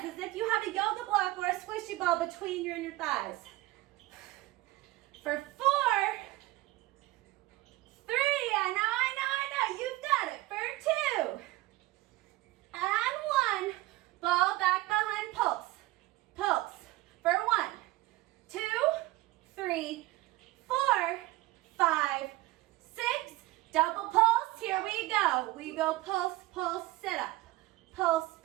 as if you have a yoga block or a squishy ball between your inner thighs. For 4, 3. I know. You've got it. For 2. And 1. Ball back behind pulse. For 1, 2, 3, 4, 5, 6. Double pulse. Here we go. We go pulse, sit up. Pulse,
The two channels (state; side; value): quieter; left; 18.7 dB